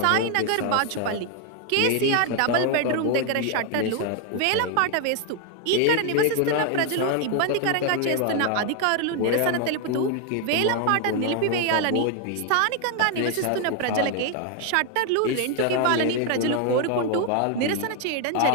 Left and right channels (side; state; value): both; different; correlation 0.00